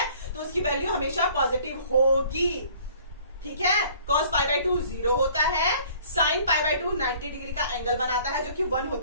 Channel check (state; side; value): inverted; both; correlation -0.54